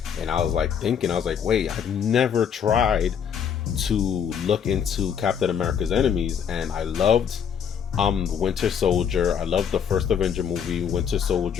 And I was thinking, wait, I've never tried to look into Captain America's enemies. And I loved Winter Soldier. I loved the first Avenger movie, Winter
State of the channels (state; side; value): quieter; right; 7.9 dB